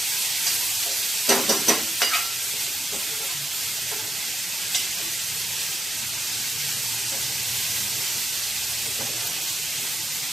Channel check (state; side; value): normal; both; correlation 0.87